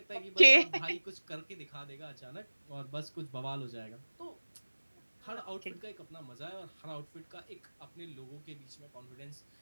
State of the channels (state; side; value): inverted; both; correlation -1.00